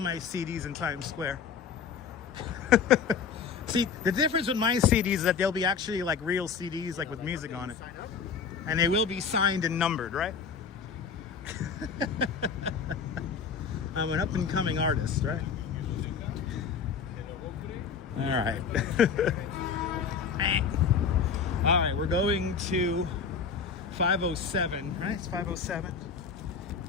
in Times Square. See, the difference with my CDs is that they'll be actually like real CDs, like with music on it. And they will be signed and numbered, right? I'm an up-and-coming artist, right? All right. All right, we're going to 507, right? It's 507.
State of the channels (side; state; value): right; quieter; 6.1 dB